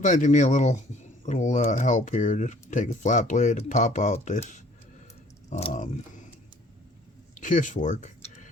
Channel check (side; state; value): both; normal; correlation 0.56